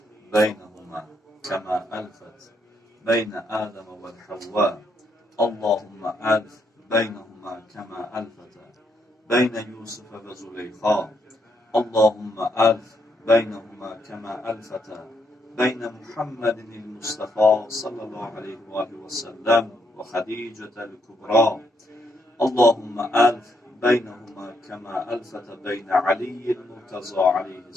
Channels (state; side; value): normal; both; correlation 0.76